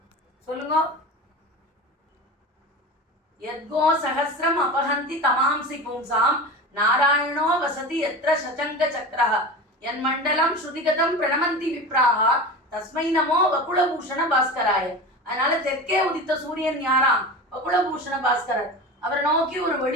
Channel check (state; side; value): normal; both; correlation 0.30